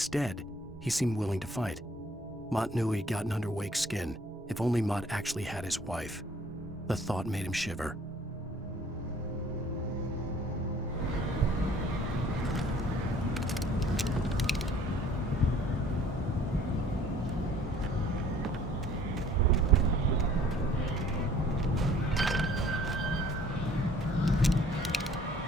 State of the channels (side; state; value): both; normal; correlation 0.55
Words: he seemed willing to fight. Mott knew he'd gotten under Wake's skin. If only Mott actually had his wife. The thought made him shiver.